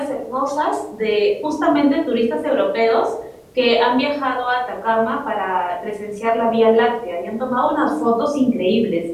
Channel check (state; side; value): identical; both; correlation 1.00